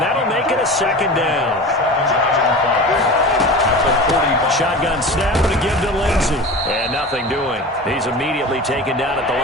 that'll make it a 2nd down. Shotgun snap to give to Lindsey. And nothing doing. He's immediately taken down at the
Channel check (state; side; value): normal; both; correlation 0.33